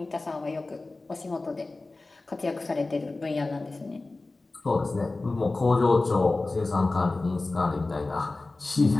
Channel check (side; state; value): right; quieter; 3.3 dB